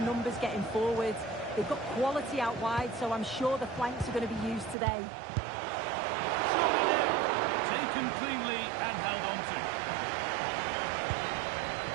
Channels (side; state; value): left; drops out; at 4.8 s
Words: numbers getting forward. They've got quality out wide, so I'm sure the flanks are going to be used today. Surely now, taken cleanly and held on to.